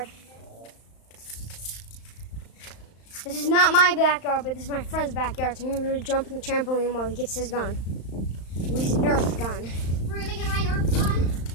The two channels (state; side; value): late; right; 35 ms